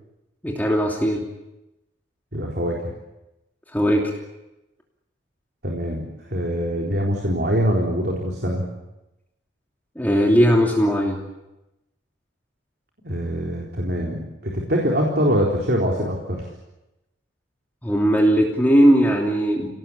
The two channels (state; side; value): normal; both; correlation 0.74